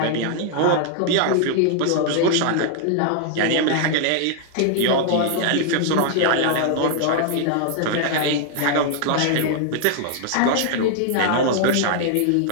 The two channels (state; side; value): different; both; correlation 0.00